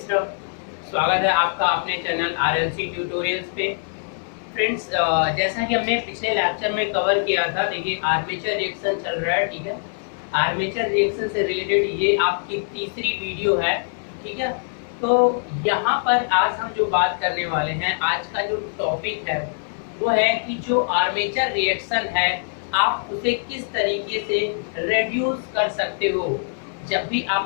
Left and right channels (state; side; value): silent; right; digital silence